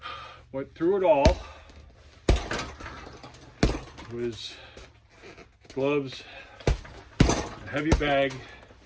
But through it all was gloves, a heavy bag,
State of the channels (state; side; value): identical; both; correlation 1.00